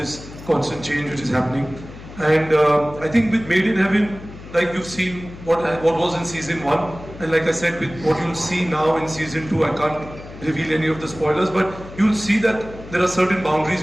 constant change which is happening. And I think with Made in Heaven, like you've seen what was in season 1, and like I said, with what you'll see now in season 2, I can't reveal any of the spoilers, but you'll see that there are certain boundaries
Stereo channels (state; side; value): noise; left; hum, 15 dB below the sound